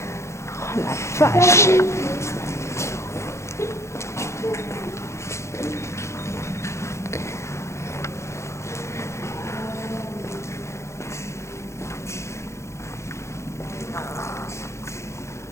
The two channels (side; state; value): right; late; 0.14 ms